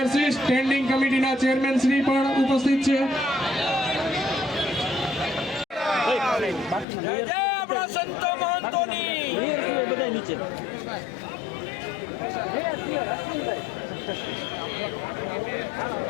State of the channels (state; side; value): drops out; right; at 6.9 s